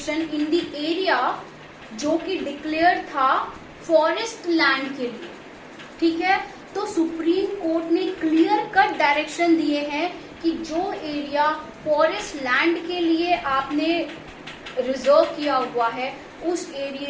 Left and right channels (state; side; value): identical; both; correlation 1.00